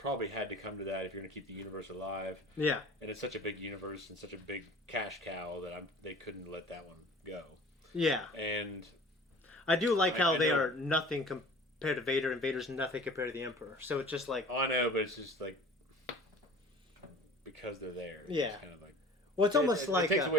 had to come to that if you're going to keep the universe alive. Yeah. And it's such a big universe and such a big cash cow that they couldn't let that one go. Yeah. And I do like how they are nothing compared to Vader, and Vader's nothing compared to the Emperor. So it's just like... I know, but it's just like... Because they're there. Yeah. It's kind of like... Well, it's almost like...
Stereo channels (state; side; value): normal; both; correlation 0.44